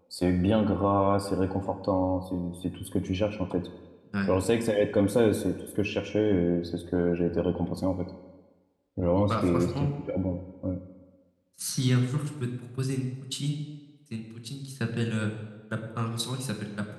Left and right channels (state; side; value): identical; both; correlation 1.00